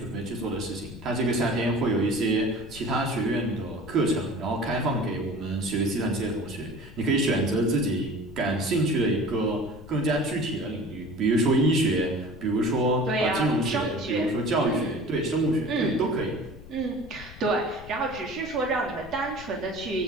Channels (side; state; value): left; noise; rumble, 17 dB below the sound